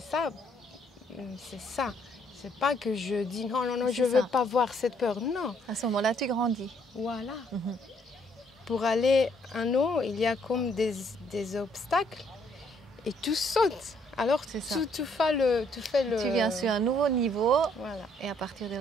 ça, c'est ça. C'est pas que je dis non, non, non, je ne veux pas voir cette peur. Non. À ce moment-là, tu grandis. Voilà. Pour aller en haut, il y a comme des obstacles et tu sautes. Alors tu fais le... Tu viens sur un nouveau niveau, voilà. Et à partir de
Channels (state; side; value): normal; both; correlation 0.68